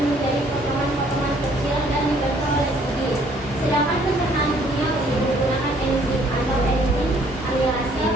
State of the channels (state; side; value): normal; both; correlation 0.62